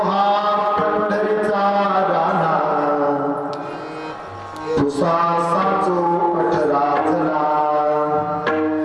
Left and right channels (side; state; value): both; identical; correlation 1.00